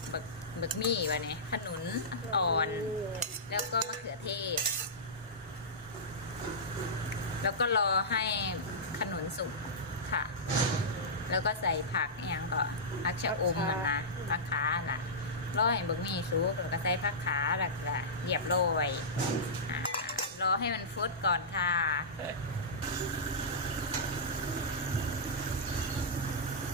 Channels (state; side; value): normal; both; correlation -0.15